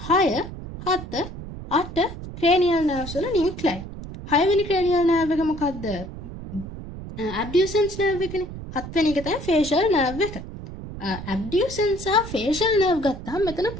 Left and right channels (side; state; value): right; noise; rumble, 11 dB below the sound